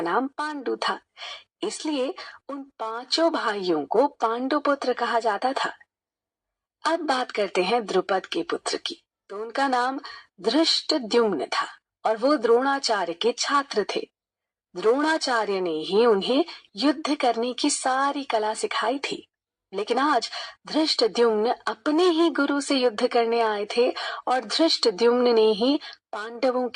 नाम पांडु था, इसलिए उन 5 भाइयों को पांडु पुत्र कहा जाता था। अब बात करते हैं द्रुपद के पुत्र की। तो उनका नाम धृष्टद्युम्न था और वो द्रोणाचार्य के छात्र थे। द्रोणाचार्य ने ही उन्हें युद्ध करने की सारी कला सिखाई थी। लेकिन आज धृष्टद्युम्न अपने ही गुरु से युद्ध करने आए थे और धृष्टद्युम्न ने ही पांडवों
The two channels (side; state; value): both; identical; correlation 1.00